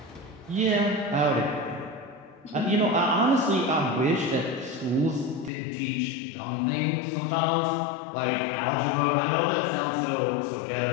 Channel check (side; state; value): right; drops out; at 5.5 s